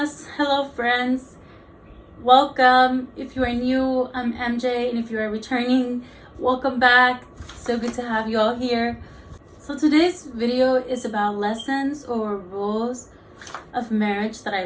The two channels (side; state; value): both; identical; correlation 1.00